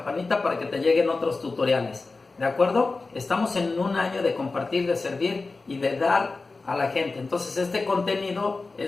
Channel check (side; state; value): right; quieter; 3.8 dB